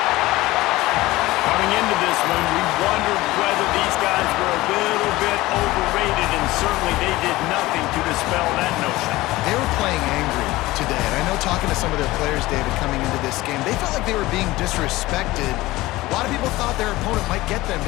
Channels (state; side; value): quieter; right; 18.6 dB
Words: Coming into this one, we wondered whether these guys were a little bit overrated, and certainly they did nothing to dispel that notion. They were playing angry today. And I know talking to some of their players, David, coming into this game, they felt like they were being disrespected A lot of people thought their opponent might get them